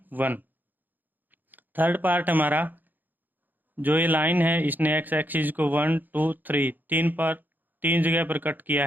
1। थर्ड पार्ट हमारा, जो ये लाइन है इसने x एक्सिस को 1 2 3 तीन जगह पर कट किया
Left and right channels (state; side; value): late; left; 0.087 ms